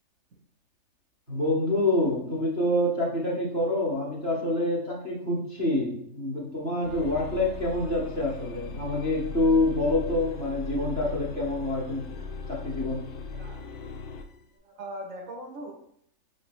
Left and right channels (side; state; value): left; late; 3.3 ms